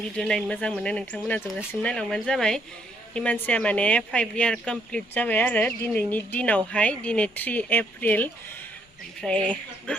भिडिअ नायनो मोजां मोनो नोंथांमोना जोबजासिम नायलांबानो जाबाय हिमानसिया माने 5 इयार कमप्लिट जाबाय आरो दिनैनि दिनावहाय दिनै 3 एप्रिल ओमफ्राय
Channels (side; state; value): both; normal; correlation 0.70